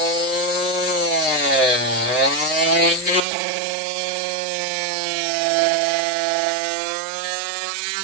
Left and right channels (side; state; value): left; drops out; at 3.2 s